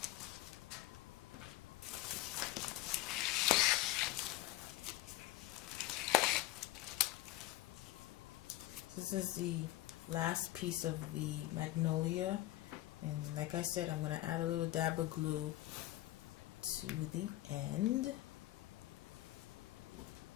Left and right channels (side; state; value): right; quieter; 16.5 dB